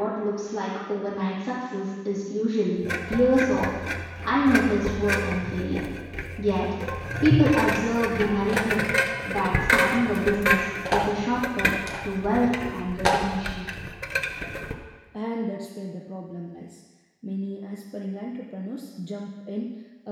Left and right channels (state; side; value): identical; both; correlation 1.00